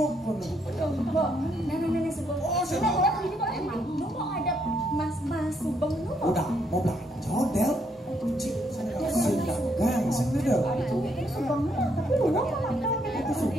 kono. Nenek sebelum. Oh, sebelum ini boleh emang. Lu mau ada mas subeng lu mau. Udah, mau belanja Del. Ci, sedangkan sing Del. Ini subeng lu, tapi lu mau makan. Itu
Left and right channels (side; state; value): both; normal; correlation 0.73